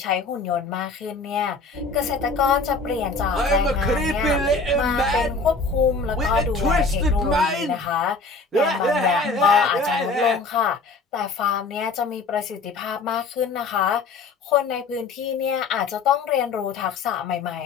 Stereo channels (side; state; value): right; quieter; 3.9 dB